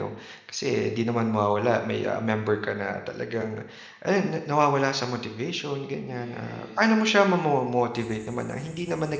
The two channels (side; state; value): both; identical; correlation 1.00